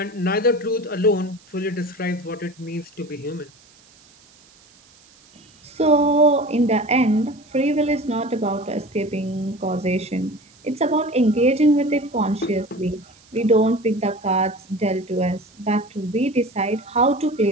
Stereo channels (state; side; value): noise; right; hiss, 28 dB below the sound